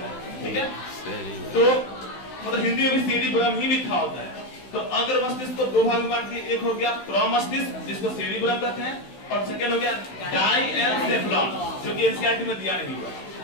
ठीक है। तो मतलब हिंदी में भी सेरिब्रम ही लिखा होता है। तो अगर मस्तिष्क को दो भागों में बांट दिया, एक हो गया प्रमस्तिष्क जिसको सेरिब्रम कहते हैं, और सेकेंड हो गया डाइएन्सेफलॉन जो कि एनसीईआरटी में दिया नहीं हुआ,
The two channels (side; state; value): right; late; 16 ms